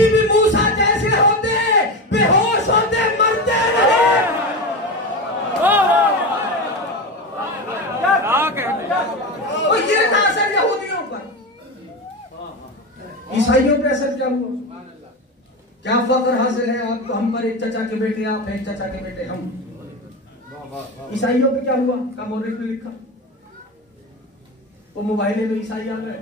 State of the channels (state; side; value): normal; both; correlation 0.21